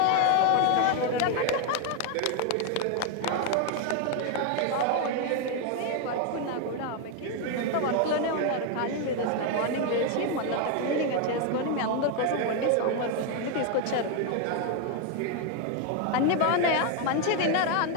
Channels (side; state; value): both; different; correlation 0.01